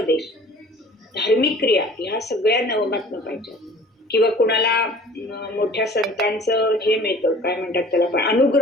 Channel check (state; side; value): normal; both; correlation 0.47